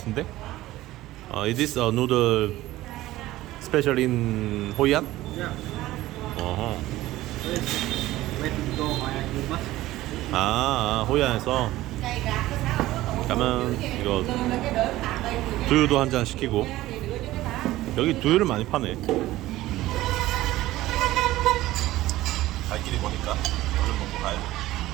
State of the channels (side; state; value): left; quieter; 16.4 dB